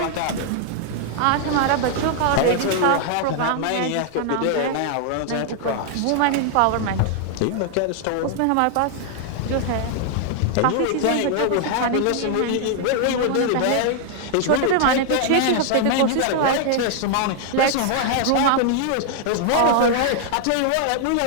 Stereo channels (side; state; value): both; different; correlation 0.00